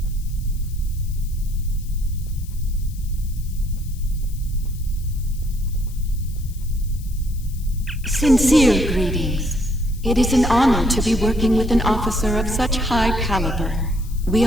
Sincere greetings. It is an honor to be working with an officer of such high caliber. We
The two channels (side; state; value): left; noise; hiss, 21 dB below the sound